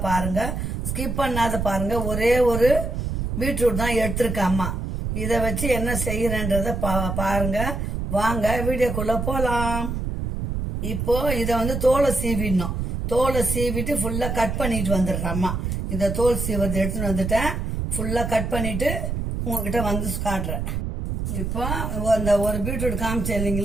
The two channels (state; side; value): noise; right; rumble, 3 dB below the sound